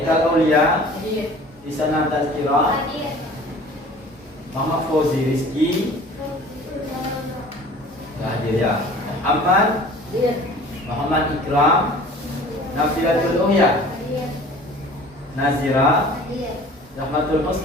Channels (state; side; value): normal; both; correlation 0.46